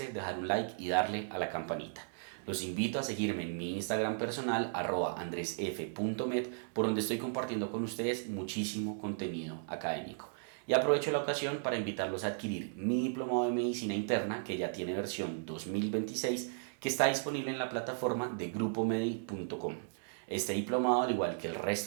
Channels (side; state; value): left; silent; digital silence